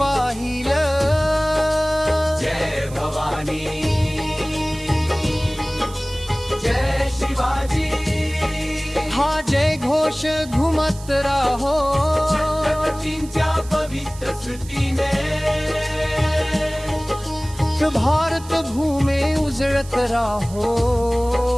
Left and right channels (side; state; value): right; noise; hiss, 18 dB below the sound